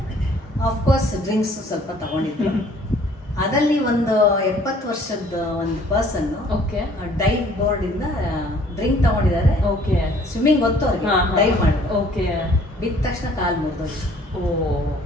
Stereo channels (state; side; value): normal; both; correlation 0.57